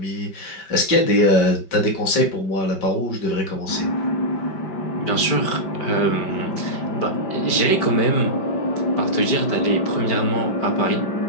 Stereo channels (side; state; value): right; late; 5.1 ms